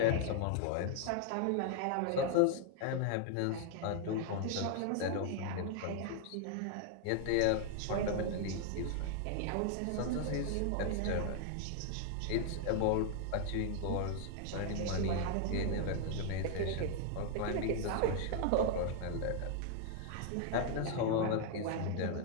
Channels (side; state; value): both; different; correlation 0.00